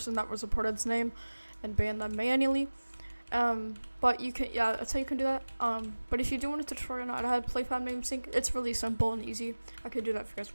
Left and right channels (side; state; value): both; inverted; correlation -1.00